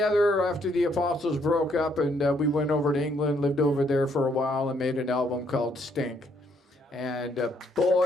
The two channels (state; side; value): normal; both; correlation 0.70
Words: after the Apostles broke up, and we went over to England, lived over there for a while, and made an album called Stink. And